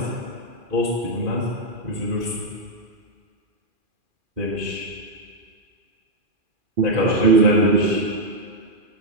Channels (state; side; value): late; left; 2.4 ms